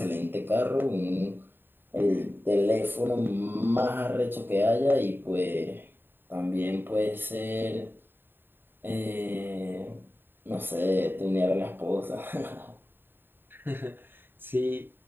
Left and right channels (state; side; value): late; left; 0.097 ms